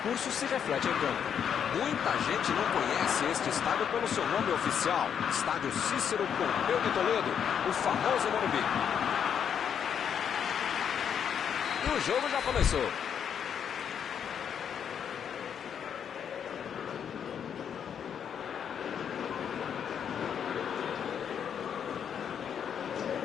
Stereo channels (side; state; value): right; quieter; 8.1 dB